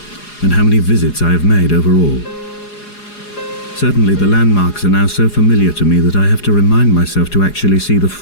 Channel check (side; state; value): right; late; 4.8 ms